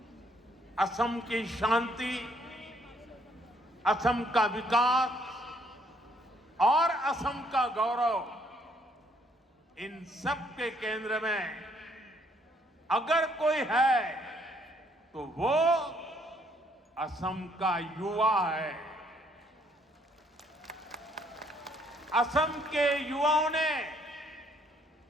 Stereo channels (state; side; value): normal; both; correlation 0.67